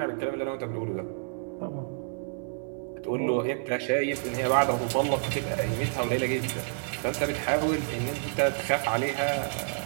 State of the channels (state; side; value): silent; left; 58 dB below the other